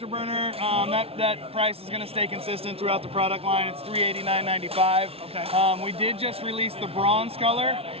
that price is going to stay consistent throughout the product line. It's $389.95. Okay. We did just release the bronze color.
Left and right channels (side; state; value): left; late; 0.28 ms